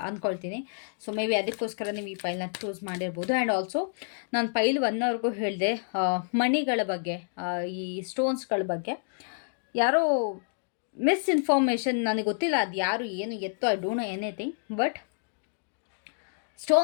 ಅಂದ್ಕೊಳ್ತೀನಿ. ಸೊ ಮೇ ಬಿ ಅದಕ್ಕೋಸ್ಕರ ನೀವು ಈ ಪೈಲ್ನ ಚೂಸ್ ಮಾಡಿರ್ಬೋದು. ಆ್ಯಂಡ್ ಆಲ್ಸೋ ನಾನು ಪೈಲ್ 1 ಹೇಳಿದೆ ಮಣಿಗಳ ಬಗ್ಗೆ, ಈ ಸ್ಟೋನ್ಸ್ಗಳ ಬಗ್ಗೆ ಯಾರೋ ಮಿಸ್ಇನ್ಫಾರ್ಮೇಷನ್, ನನಗೆ ಗೊತ್ತಿಲ್ಲ ಅದು ಯಾರು ಏನು ಎತ್ತೋ, I don't know anything. But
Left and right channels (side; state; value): right; silent; digital silence